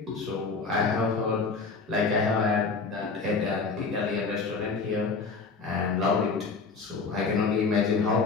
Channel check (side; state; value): right; quieter; 4.5 dB